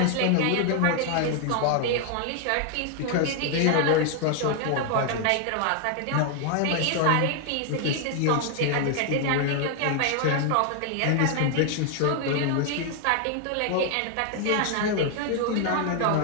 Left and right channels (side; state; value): both; different; correlation 0.00